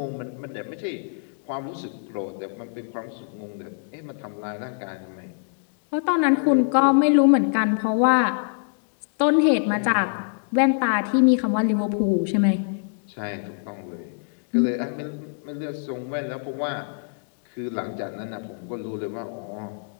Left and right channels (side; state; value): right; silent; digital silence